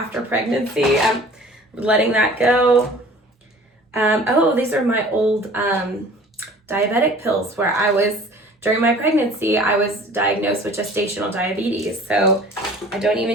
pregnancy. I'm letting that go. Oh, these are my old diabetic pills where during my pregnancy, I was diagnosed with gestational diabetes. So I don't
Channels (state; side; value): normal; both; correlation 0.47